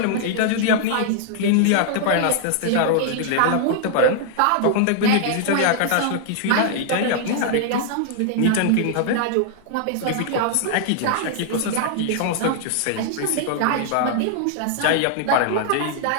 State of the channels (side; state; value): both; different; correlation 0.00